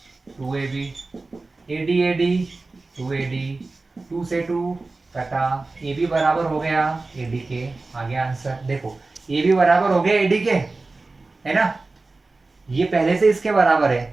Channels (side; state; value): left; quieter; 3.5 dB